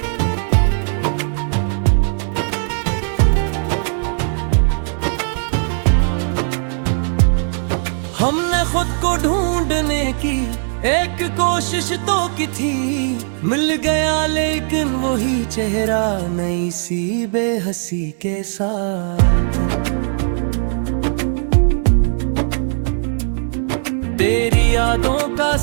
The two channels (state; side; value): silent; left; 58 dB below the other